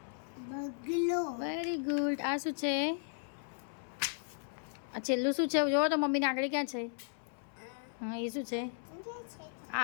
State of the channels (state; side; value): silent; right; 54 dB below the other